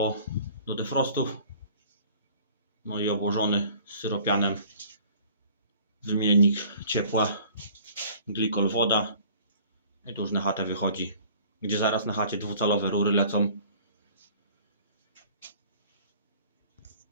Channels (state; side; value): inverted; both; correlation -0.51